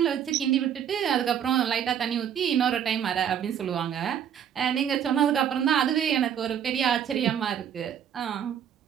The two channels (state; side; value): quieter; left; 9.1 dB